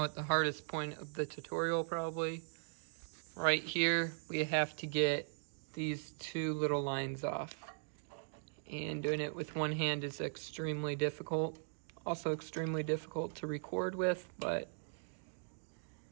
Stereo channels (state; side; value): silent; left; digital silence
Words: at the hardest point of the tutorial probably. Right here, we have to get these two little lines off. And doing it with one hand is extremely difficult. Also extremely difficult to record with, but